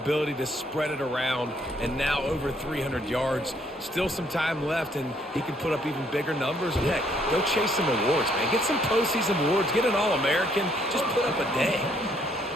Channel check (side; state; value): both; normal; correlation 0.67